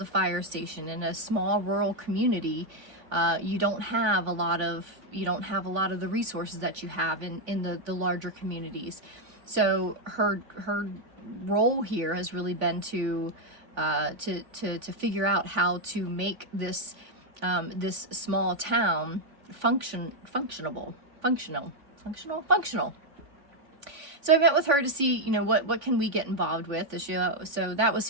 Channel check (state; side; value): late; left; 3.5 ms